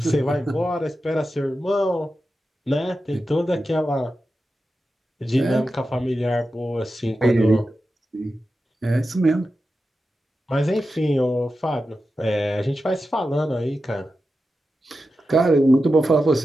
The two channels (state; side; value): normal; both; correlation 0.91